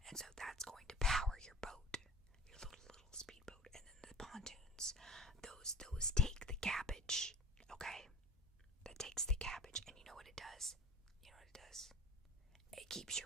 and so that's going to power your boat, your little speedboat. And then the pontoons, those take the cabbage. Okay, that takes the cabbage, and you know what it does? It keeps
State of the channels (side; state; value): both; normal; correlation 0.43